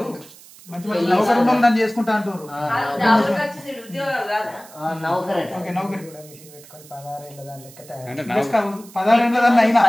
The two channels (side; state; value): right; noise; hiss, 21 dB below the sound